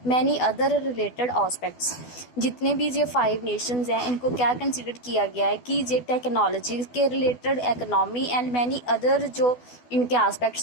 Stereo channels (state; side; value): late; right; 12 ms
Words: many other related aspects. जितने भी ये 5 नेशंस हैं, इनको क्या कंसिडर किया गया है कि ये टेक्नोलॉजी के related, economy and many other जो इनके